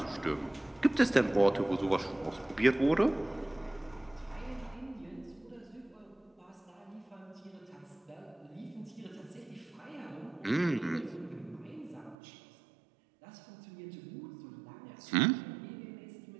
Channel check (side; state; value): left; drops out; at 12.2 s